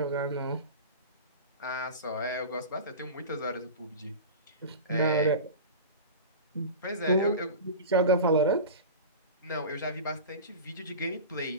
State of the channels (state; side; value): inverted; both; correlation -0.32